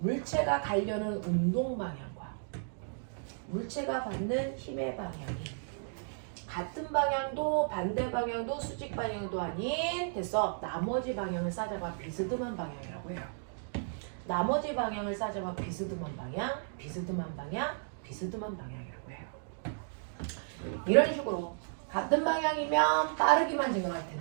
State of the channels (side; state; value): left; silent; digital silence